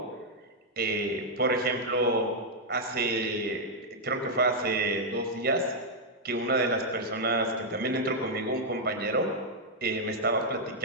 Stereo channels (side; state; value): both; normal; correlation -0.04